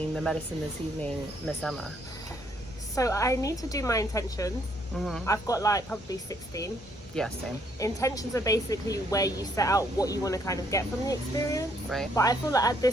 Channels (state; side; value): normal; both; correlation 0.69